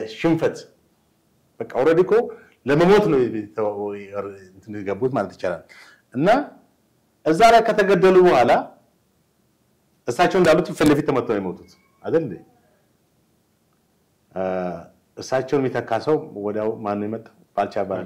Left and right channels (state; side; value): identical; both; correlation 1.00